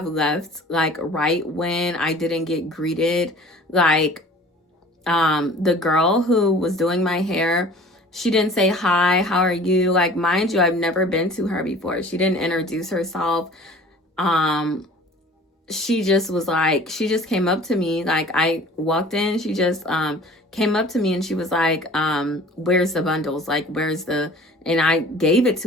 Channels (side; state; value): both; normal; correlation 0.46